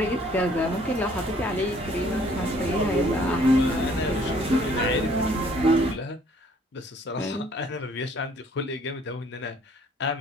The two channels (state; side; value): normal; both; correlation 0.60